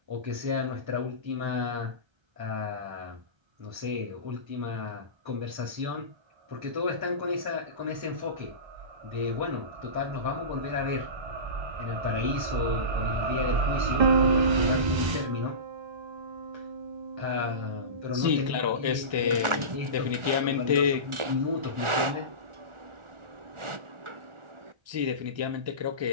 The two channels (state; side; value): late; left; 1.3 ms